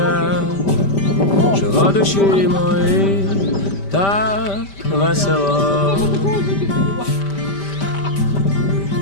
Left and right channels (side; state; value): right; late; 5.1 ms